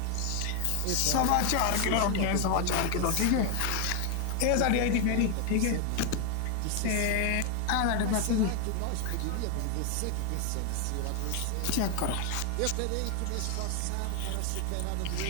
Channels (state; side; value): different; both; correlation 0.00